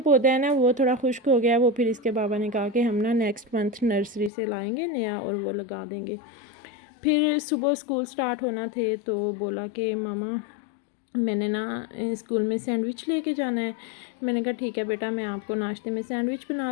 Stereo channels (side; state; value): right; drops out; at 4.3 s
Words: पौधा है ना, वो थोड़ा खुश्क हो गया। वो फिर इसके बाबा ने कहा कि हम ना नेक्स्ट मंथ नर्सरी से लाएंगे नया और वो लगा देंगे। फिर सुबह स्कूल स्टार्ट होना थे तो बोला कि मामा मैंने ना स्कूल में सैंडविच लेके जाना है। मैंने कहा ठीक है बेटा, मैं आपको नाश्ते में सैंडविच